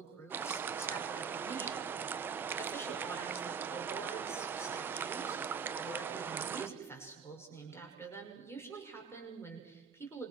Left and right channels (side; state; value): left; quieter; 6.2 dB